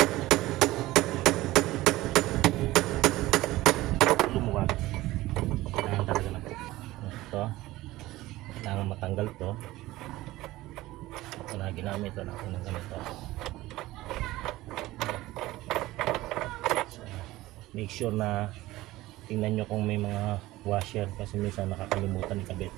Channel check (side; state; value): left; quieter; 17.6 dB